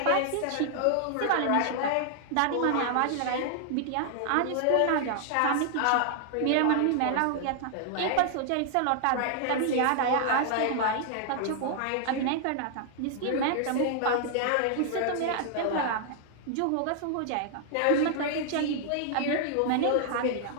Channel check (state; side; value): different; both; correlation 0.00